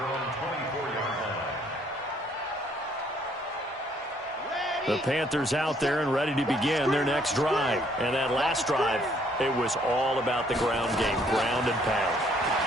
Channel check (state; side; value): normal; both; correlation 0.65